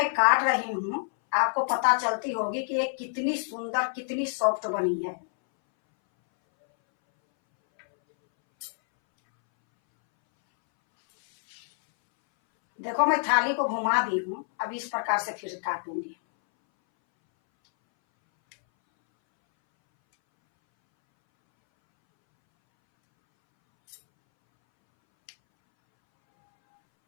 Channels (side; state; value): right; silent; 60 dB below the other